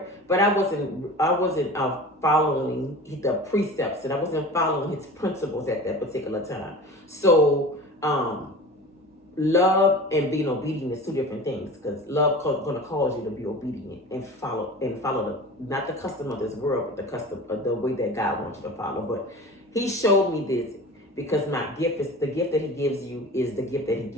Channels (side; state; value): both; normal; correlation 0.36